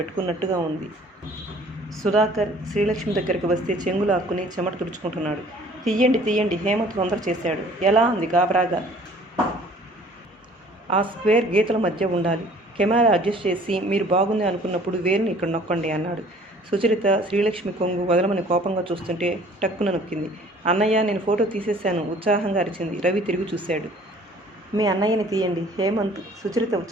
ఉంది. సుధాకర్ శ్రీలక్ష్మి దగ్గరికి వస్తే చెంగులు ఆక్కుని చెమట తుడుచుకుంటున్నాడు. తీయండి హేమంత్ తొందర చేశాడు. ఎలా అంది గాబరాగా. ఆ స్క్వేర్ గీతల మధ్య ఉండాలి. కెమెరా అడ్జస్ట్ చేసి మీరు బాగుంది అనుకున్నప్పుడు వేరుని ఇక్కడ నొక్కండి అన్నాడు. సుచరిత శ్రీలక్ష్మి కొంగు వదలమని కోపంగా చూస్తుంటే టక్కున నొక్కింది. అన్నయ్య నేను ఫోటో తీసేశాను ఉత్సాహంగా అరిచింది. రవి తిరిగి చూశాడు. మీ అన్నయ్యని తీయండి హేమంత్ సుచరిత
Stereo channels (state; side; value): normal; both; correlation 0.53